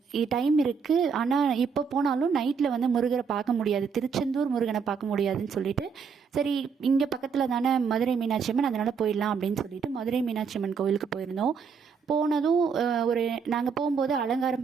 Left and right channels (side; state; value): left; quieter; 6.0 dB